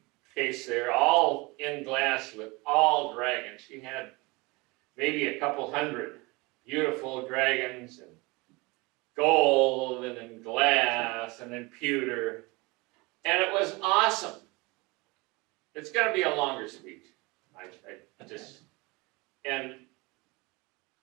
case there, all in glass with all dragons. She had maybe a couple hundred beautiful dragons, and gold, and in glass, and in pewter. And it was awesome. It's going to be a longer speech. And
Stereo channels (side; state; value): left; quieter; 25.1 dB